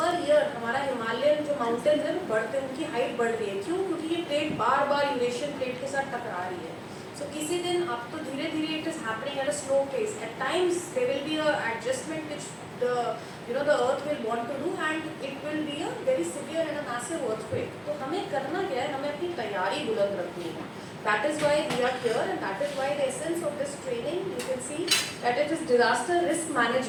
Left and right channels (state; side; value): identical; both; correlation 1.00